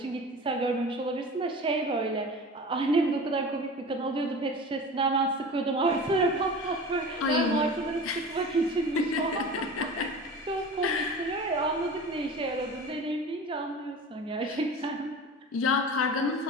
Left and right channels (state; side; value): normal; both; correlation 0.35